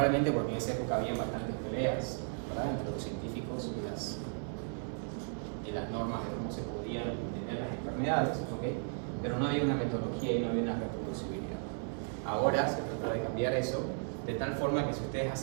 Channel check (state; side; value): silent; left; 54 dB below the other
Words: porque en esa época había bastantes peleas, ¿verdad?, entre los científicos y las normas de cómo se podían entender las enfermedades, ¿okay? Pero no había una metodología y no había una reproducibilidad. Ahora se trata de cambiar eso de tal forma que si ustedes